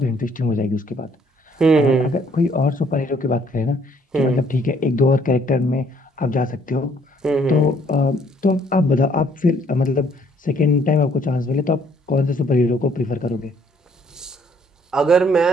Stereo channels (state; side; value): normal; both; correlation 0.64